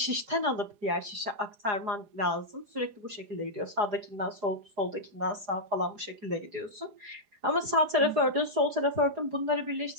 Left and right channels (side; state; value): left; late; 4.9 ms